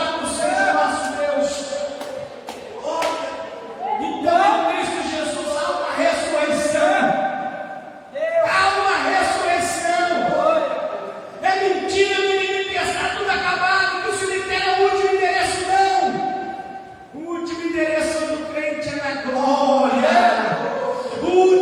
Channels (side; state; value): both; identical; correlation 1.00